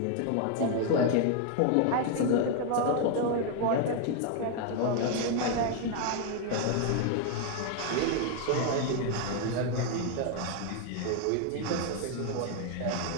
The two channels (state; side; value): different; both; correlation 0.01